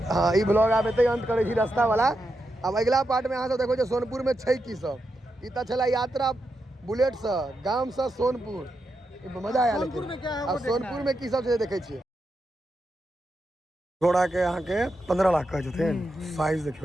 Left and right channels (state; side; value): normal; both; correlation 0.86